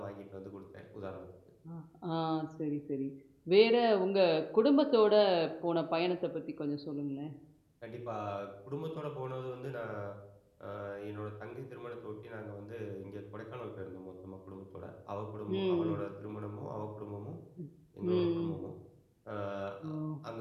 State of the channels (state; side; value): identical; both; correlation 1.00